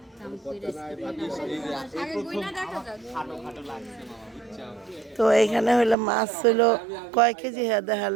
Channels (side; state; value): left; drops out; at 6.0 s